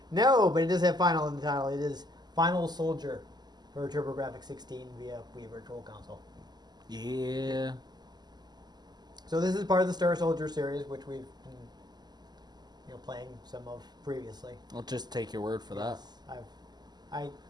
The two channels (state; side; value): late; left; 0.20 ms